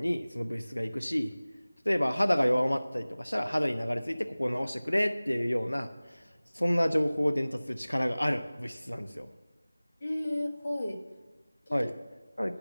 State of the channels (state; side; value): inverted; both; correlation -0.99